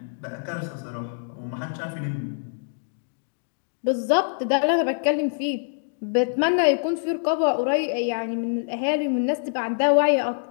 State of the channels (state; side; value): silent; right; digital silence